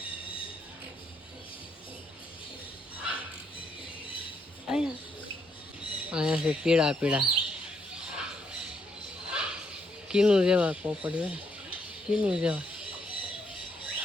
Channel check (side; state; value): both; normal; correlation 0.75